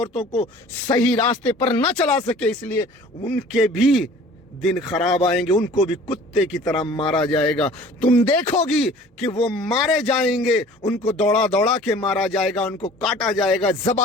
को सही रास्ते पर न चला सके, इसलिए उनके भी दिन खराब आएंगे, उनको भी कुत्ते की तरह मारा जाएगा। तुम देखोगी कि वो मारे जाएंगे, उनको दौड़ा दौड़ा के मारा जाएगा, उनको काटा जाएगा,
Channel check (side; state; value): both; normal; correlation 0.47